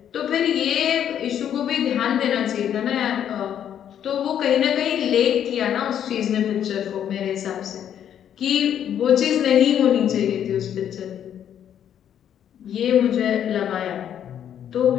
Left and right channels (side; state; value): right; quieter; 9.7 dB